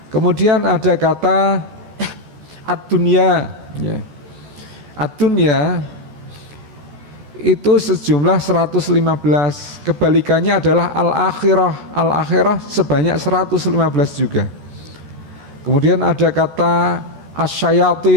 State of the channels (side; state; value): left; late; 14 ms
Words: Kemudian ada kata ad-dunya, ya. Ad-dunya itu sejumlah 115. Kebalikannya adalah al-akhirah. Al-akhirah sebanyak 115 juga. Kemudian ada kata